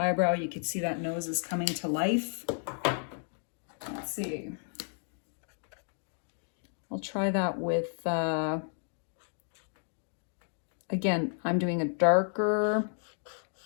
you can see that nose is coming to life. Let's see. I'll try that with... Again, I'm doing a darker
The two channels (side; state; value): right; silent; 56 dB below the other